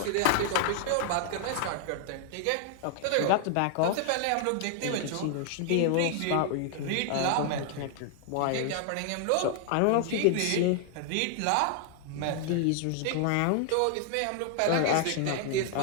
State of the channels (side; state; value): both; different; correlation 0.00